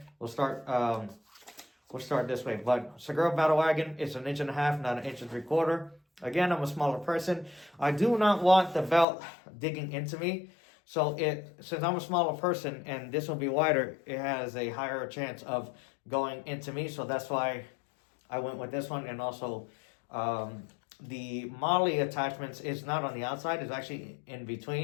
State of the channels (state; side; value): drops out; right; at 9.1 s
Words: We'll start this way. But Segura Battle Wagon is 1.5 inches, not 1 3/4 inches. Again, I'm a smaller person. I do not want the belt digging into me. So, since I'm a smaller person and this will be wider, it has a higher chance of going into me. So, that's why I went with this one. And also, the Molly attachments is not on the outside, it's actually in